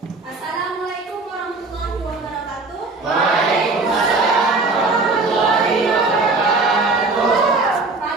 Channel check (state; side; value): quieter; left; 3.6 dB